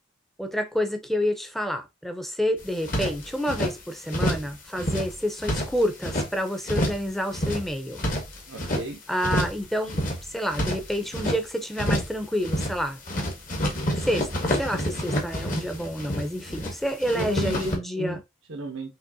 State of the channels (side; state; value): both; normal; correlation 0.74